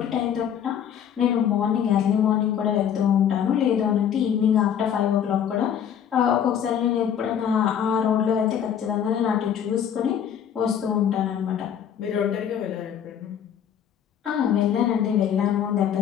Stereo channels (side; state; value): right; quieter; 8.9 dB